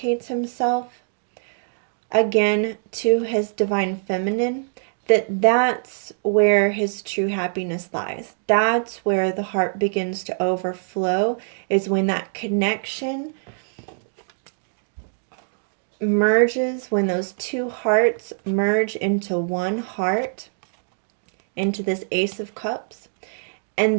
himself again to his divine feminine, that's where his true happiness lies. That's where the heart begins to overflow, is when that connection merges, when those two hearts merge into one heart, into this Ace of Cups.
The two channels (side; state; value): left; silent; digital silence